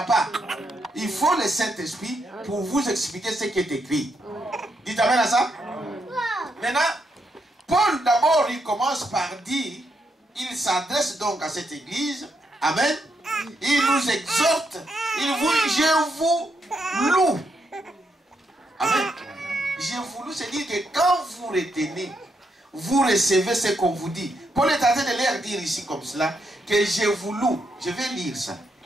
pas. Il faut le Saint-Esprit pour vous expliquer ce qui est écrit. Dites amen à ça. Maintenant, Paul d'abord, il commence par dire, il s'adresse donc à cette église. Amen. Il nous exhorte. Je vous loue. Amen. Je vous loue, c'est dire que quand vous retenez, vous recevez ce qu'on vous dit. Paul est en train de leur dire ici comme cela, que je vous loue. Je vais lire ça.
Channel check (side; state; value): both; normal; correlation 0.80